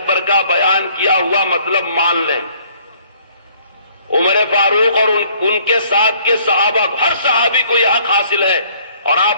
کا بیان کیا ہوا مطلب مان لیں۔ عمر فاروق اور ان کے ساتھ کے صحابہ، ہر صحابی کو یہ حق حاصل ہے۔ اور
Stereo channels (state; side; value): inverted; both; correlation -0.60